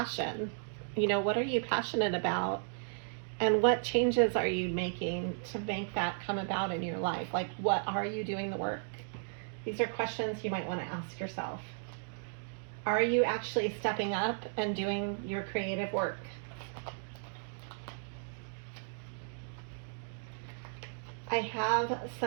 You know, what are you passionate about, and what changes are you making to make that come about in your life? Like, what are you doing the work? These are questions you might want to ask yourself. Are you actually stepping up and doing your creative work? I have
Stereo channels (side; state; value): left; silent; digital silence